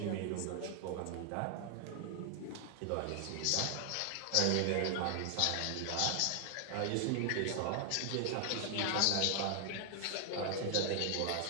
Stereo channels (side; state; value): both; different; correlation 0.00